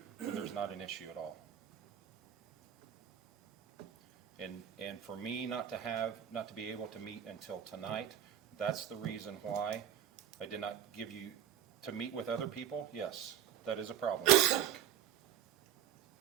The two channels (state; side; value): quieter; left; 9.9 dB